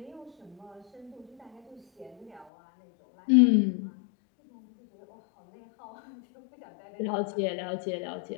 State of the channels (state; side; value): drops out; right; at 2.5 s